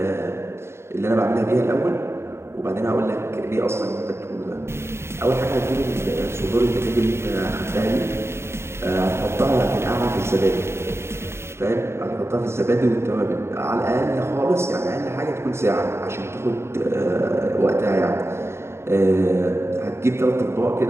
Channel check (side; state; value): left; late; 0.13 ms